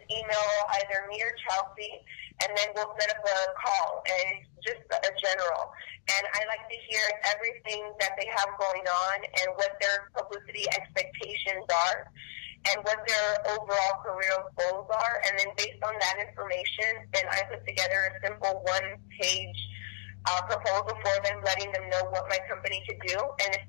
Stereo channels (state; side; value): silent; right; digital silence